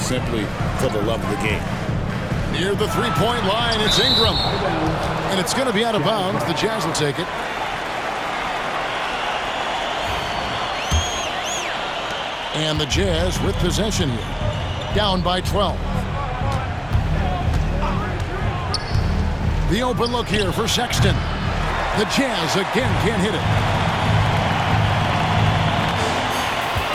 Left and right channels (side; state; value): both; identical; correlation 1.00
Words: for the love of the game. Near the three-point line, it's Ingram. And it's going to be out of bounds. The Jazz will take it. And the Jazz with possession here. Down by 12. The open look here for Sexton. The Jazz again can't hit it.